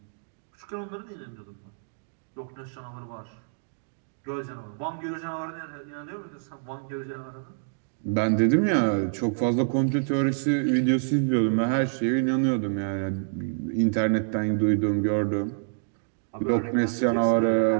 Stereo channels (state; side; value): silent; left; digital silence